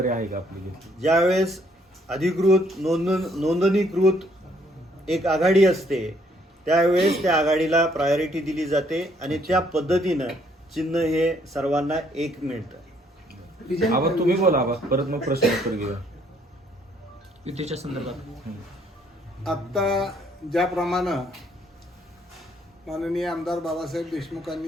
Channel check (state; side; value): normal; both; correlation 0.66